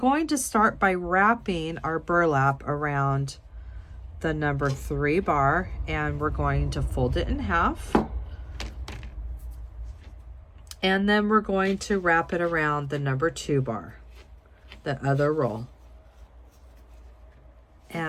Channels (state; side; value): identical; both; correlation 1.00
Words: to start by wrapping our burlap around the number 3 bar, and we're going to fold it in half, and then we're going to wrap it around the number 2 bar, the other roll.